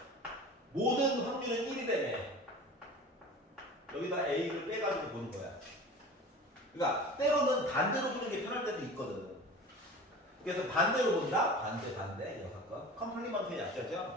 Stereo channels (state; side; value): normal; both; correlation 0.37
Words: 모든 확률은 1이라며. 여기다 A를 빼가지고 보는 거야. 그러니까 때로는 반대로 보는 게 편할 때도 있거든. 그래서 반대로 본다? 반대. 여사건. 컴플리먼트의